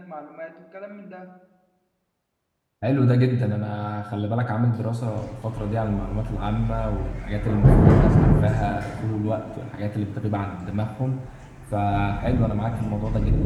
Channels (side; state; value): both; identical; correlation 1.00